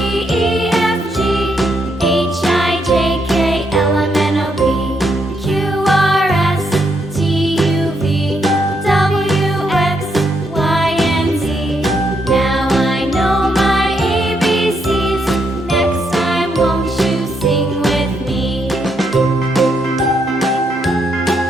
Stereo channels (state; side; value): normal; both; correlation 0.77